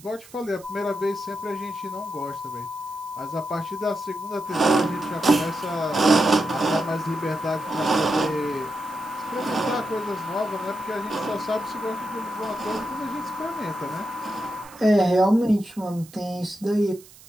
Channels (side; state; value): right; noise; hiss, 22 dB below the sound